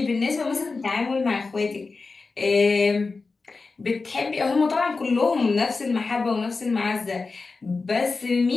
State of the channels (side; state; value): right; quieter; 4.1 dB